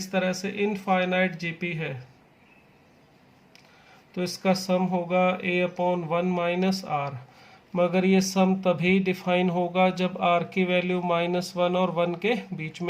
तरह से इनफाइनाइट जीपी है तो इसका सम होगा a/1 - r। मगर ये सम तभी डिफाइन होगा जब r की वैल्यू -1 और 1 के बीच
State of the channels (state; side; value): identical; both; correlation 1.00